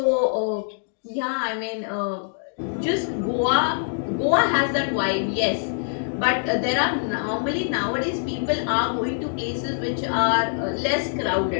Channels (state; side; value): silent; right; digital silence